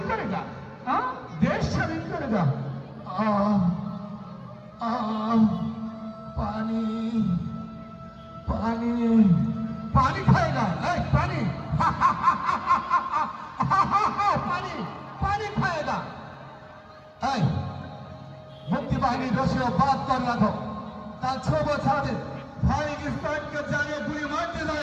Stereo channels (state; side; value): identical; both; correlation 1.00